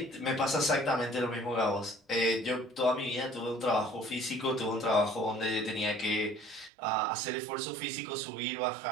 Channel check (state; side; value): drops out; left; at 6.7 s